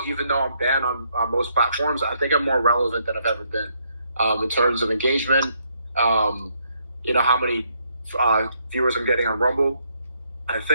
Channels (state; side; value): inverted; both; correlation -0.73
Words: even though I'm banned on most platforms, I think I'm more relevant than I've ever been in terms of engagement. How many viewers I'm getting on Rumble. I